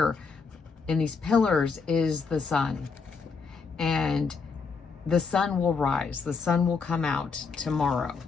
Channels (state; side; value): quieter; right; 5.0 dB